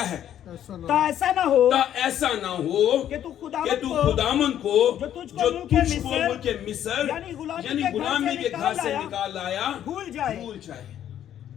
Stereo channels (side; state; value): right; quieter; 10.7 dB